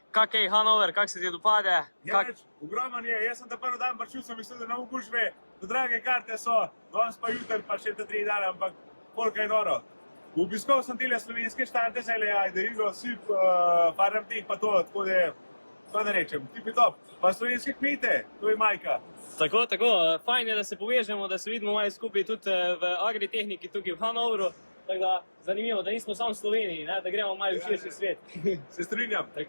kak je Hanover, kak se ti dopade? Ogroman je, jaz sem ta prvi dan prišel, sem mislil, da ne bo gužve, da drage karte so, danes pa jutri pa še te 3 dana, ampak koliko je noro. Obiskal sem tele slovenske štante, Derigo, Sip, Farmteh pa to, tako da, kaj da rečem, tipi top. Pa slovenske kmete, to je majka. Tako, fajn je, da se povežemo, da se vidimo malo skupaj tudi v agritehniki tukaj v Hanoveru. Tako da, zanimivo, da nismo samo v Sloveniji, ne? Da gremo malo v širši svet. Se strinjam.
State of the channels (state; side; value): inverted; both; correlation -1.00